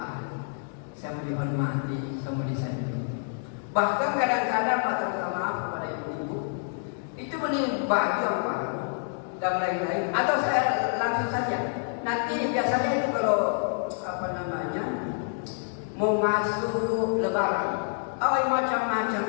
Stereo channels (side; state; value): right; silent; digital silence